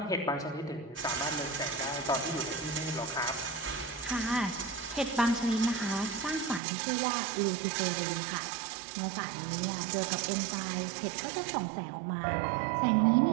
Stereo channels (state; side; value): drops out; left; at 6.6 s